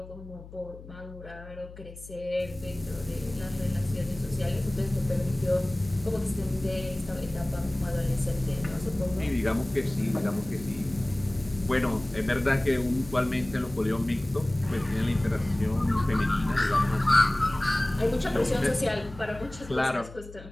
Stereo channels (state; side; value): noise; left; hum, 16 dB below the sound